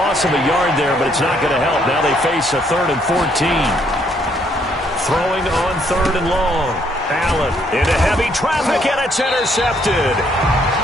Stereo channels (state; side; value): normal; both; correlation 0.69